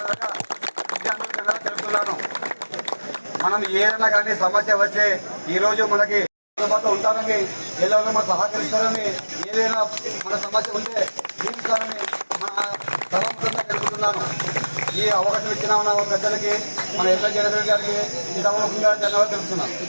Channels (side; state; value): both; inverted; correlation -1.00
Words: విద్యార్థులు తెలుపుతున్నాను. మనం ఏదైనా కానీ సమస్య వస్తే ఈరోజు మనకి అందుబాటులో ఉంటారని, ఎల్లవరూ మనం సహకరిస్తారని, ఏదైనా మన సమస్య ఉంటే తీరుస్తారని మన సభాముఖంగా తెలుపుతున్నాను. ఈ అవకాశం ఇచ్చిన మన పెద్దలకి, మన ఎమ్మెల్యే జయనేశ్వరి గారికి ఈ సభాముఖంగా ధన్యవాదాలు తెలుపుతున్నాం.